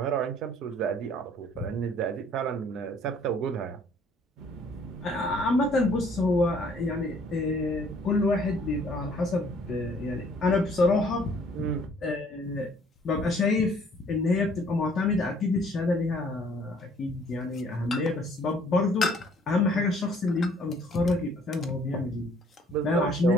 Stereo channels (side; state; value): both; normal; correlation 0.59